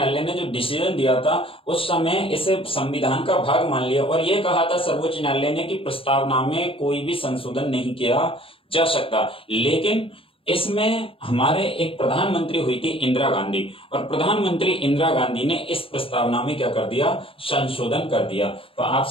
ने जो डिसीजन दिया था उस समय इसे संविधान का भाग मान लिया और यह कहा था सर्वोच्च न्यायालय ने कि प्रस्तावना में कोई भी संशोधन नहीं किया जा सकता। लेकिन इसमें हमारे एक प्रधानमंत्री हुई थी इंदिरा गांधी, और प्रधानमंत्री इंदिरा गांधी ने इस प्रस्तावना में क्या कर दिया? संशोधन कर दिया। तो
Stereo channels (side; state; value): right; late; 0.26 ms